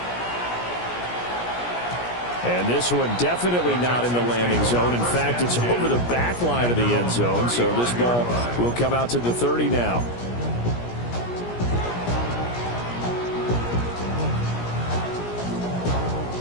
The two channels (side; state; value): right; late; 17 ms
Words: And this one definitely not in the landing zone. In fact, it's over the back line of the end zone. So this ball will come out to the 30 now.